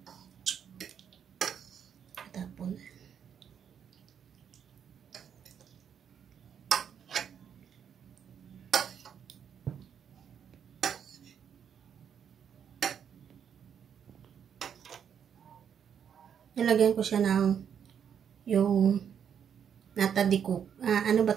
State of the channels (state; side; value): quieter; left; 8.1 dB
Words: Tapon. Nilagyan ko siya ng yung nata de coco. Ano ba